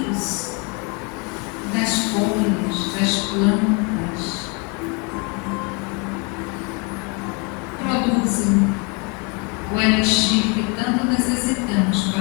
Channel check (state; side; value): quieter; right; 31.7 dB